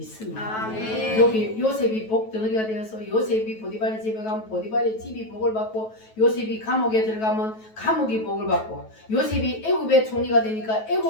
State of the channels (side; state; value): right; late; 9.2 ms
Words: 아멘. 여기 요셉이 복덩어리가 되어서 요셉이 보디발의 집에 가면 보디발의 집이 복을 받고 요셉이 감옥에 들어가면 감옥이 복을 받고 요셉이 애굽의 총리가 되니까